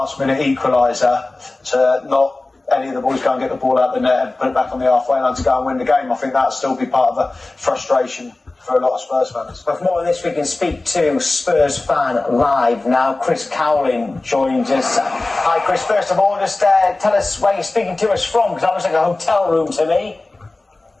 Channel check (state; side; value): quieter; right; 3.1 dB